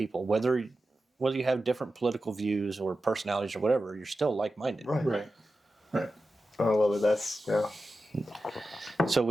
Whether you have different political views or personalities or whatever, you're still like-minded. Right. I love it. That's yeah. So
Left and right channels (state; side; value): normal; both; correlation 0.92